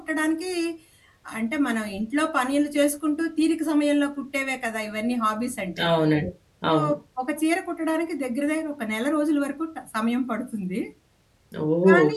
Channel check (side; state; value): both; identical; correlation 1.00